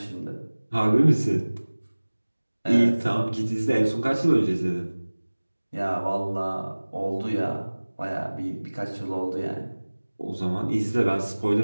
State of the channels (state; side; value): inverted; both; correlation -1.00